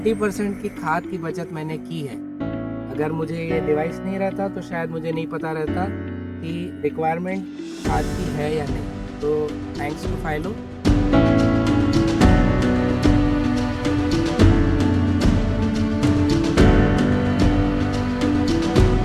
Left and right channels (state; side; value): identical; both; correlation 1.00